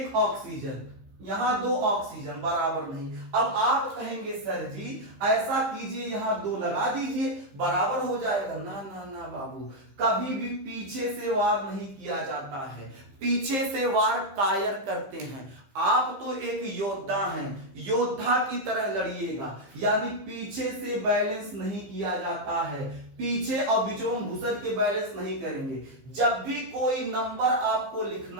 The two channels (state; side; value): late; left; 15 ms